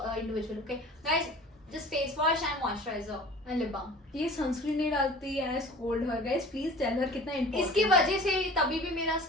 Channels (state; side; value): normal; both; correlation 0.43